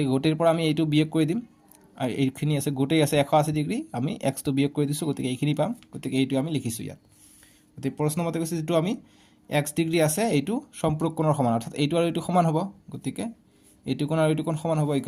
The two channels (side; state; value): both; identical; correlation 1.00